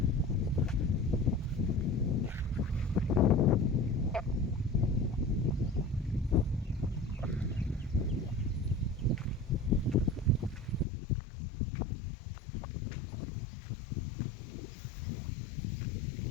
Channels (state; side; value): drops out; right; at 10.9 s